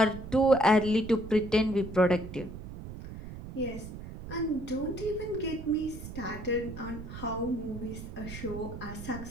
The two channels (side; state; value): right; noise; rumble, 11 dB below the sound